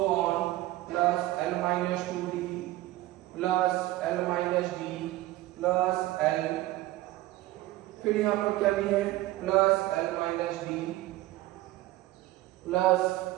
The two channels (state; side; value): quieter; left; 17.1 dB